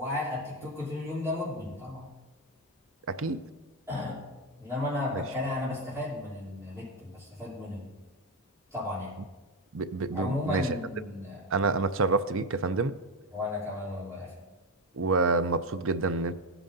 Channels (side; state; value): both; normal; correlation 0.10